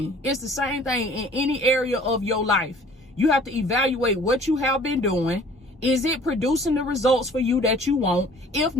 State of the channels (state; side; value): normal; both; correlation 0.51